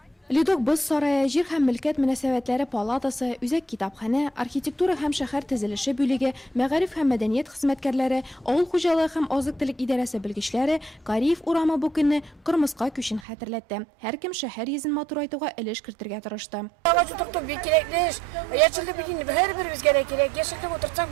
Лидок Боз сарае, җир һәм милкәт мөнәсәбәтләре палатасы, үзәк китапханә, архитектура һәм шәһәр төзелеше бүлеге, мәгариф һәм мәдәният хезмәткәрләре, авыл хуҗалыгы һәм азык-төлек идарәсе белгечләре Кореев урамы бу көнне кырмыска күчен хәтерләтте. Һәркем шәһәр йөзен матурайтуга өлеш кертергә тырышты. Агач утырту бик кирәкле эш. Яшеллек бит инде һәрберебезгә кирәк. Яшеллек утыртсак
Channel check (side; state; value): left; drops out; at 13.2 s